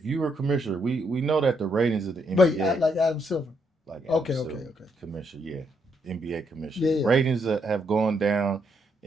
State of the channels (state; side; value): normal; both; correlation 0.76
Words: you were commissioner, we know that the ratings of the NBA, Wait, like Adam Silver. Like Adam okay, Silver, commissioner, NBA commissioner. Yeah. Ratings have gone down.